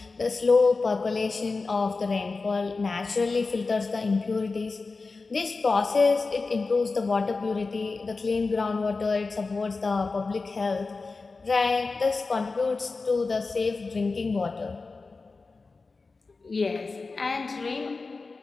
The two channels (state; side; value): quieter; right; 4.0 dB